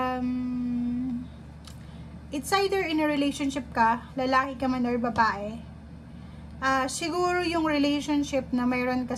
it's either in a relationship ka, lalaki ka man or babae. Siguro yung relationship na mayroon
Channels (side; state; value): both; identical; correlation 1.00